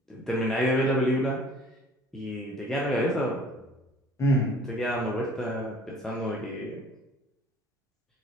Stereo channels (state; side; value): normal; both; correlation 0.52